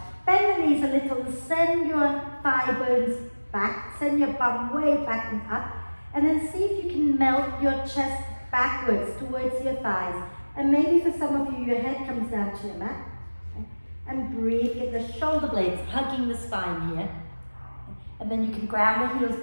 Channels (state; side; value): inverted; both; correlation -1.00